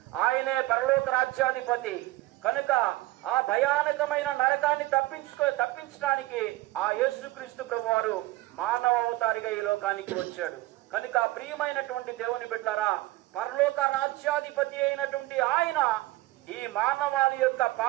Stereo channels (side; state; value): left; quieter; 18.5 dB